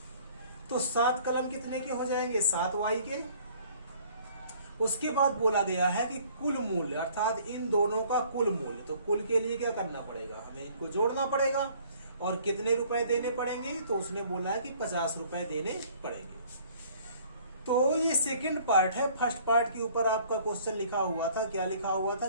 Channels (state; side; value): inverted; both; correlation -0.56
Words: तो 7 कलम कितने के हो जाएंगे? 7y के। उसके बाद बोला गया है कि कुल मूल्य, अर्थात इन दोनों का कुल मूल्य। तो कुल के लिए क्या करना पड़ेगा? हमें इनको जोड़ना पड़ेगा। और कितने रुपए देने पड़ेंगे? तो उसने बोला है कि 50 रुपए देने पड़ेंगे। तो ये सेकंड पार्ट है। फर्स्ट पार्ट के ऊपर आपका क्वेश्चन लिखा हुआ था। क्या लिखा हुआ था?